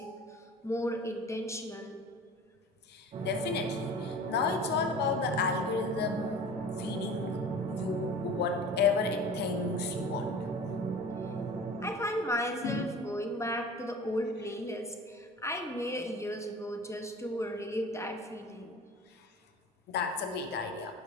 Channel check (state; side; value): normal; both; correlation 0.39